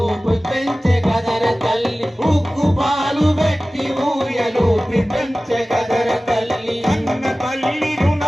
పెంచే కదర తల్లి. ఉక్కు పాలు పెట్టి ఊయలూపి పెంచే కదర తల్లి. అన్న తల్లి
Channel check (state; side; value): normal; both; correlation 0.97